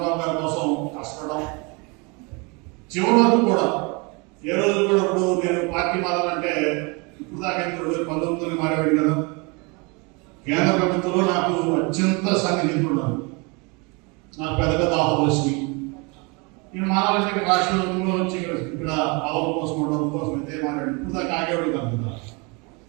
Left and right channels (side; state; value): left; quieter; 29.9 dB